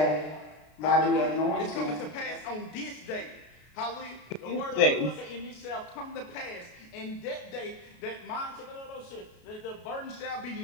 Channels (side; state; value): right; late; 33 ms